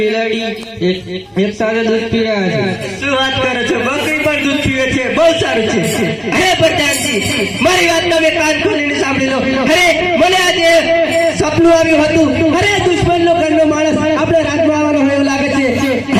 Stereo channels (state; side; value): identical; both; correlation 1.00